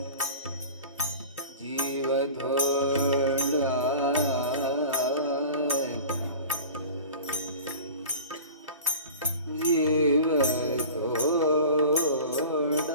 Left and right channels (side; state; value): both; inverted; correlation -0.39